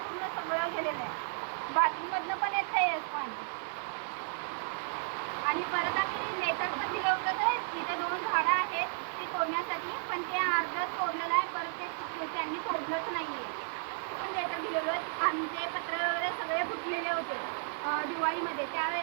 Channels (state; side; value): silent; left; digital silence